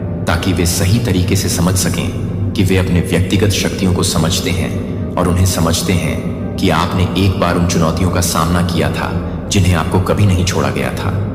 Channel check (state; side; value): identical; both; correlation 1.00